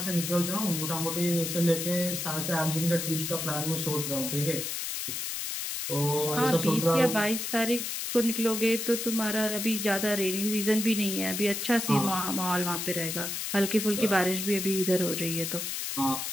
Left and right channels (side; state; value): left; noise; hiss, 3 dB below the sound